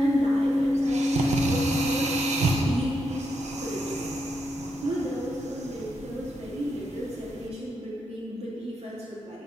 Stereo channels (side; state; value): both; normal; correlation 0.82